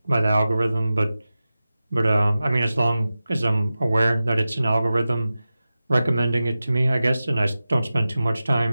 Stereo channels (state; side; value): inverted; both; correlation -0.94